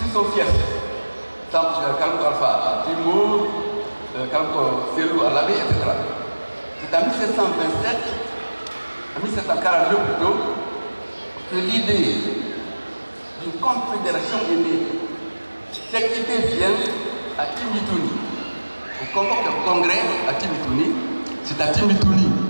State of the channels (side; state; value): both; inverted; correlation -1.00